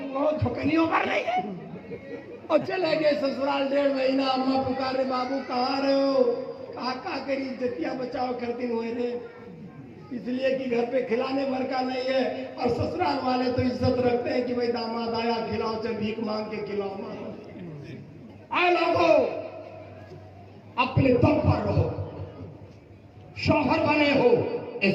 بہت ٹھکنیوں پر نہیں ہے، اور چلے گئے سسرال 1.5 مہینہ. اماں پکارے بابو کہاں رہے ہو؟ کہا کری عزتیاں بچاؤ کرتی ہوئے رہے، اس لیے کہ گھر پہ کھلانے بھر کا نہیں ہے. اور سسرال والے تو عزت رکھتے ہیں کہ بھائی داماد آیا کھلاؤ، چل بھیک مانگ کے کھلاؤ. اے لوگو اپنے دم پر رہو، شوہر بنے ہو،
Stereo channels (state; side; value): identical; both; correlation 1.00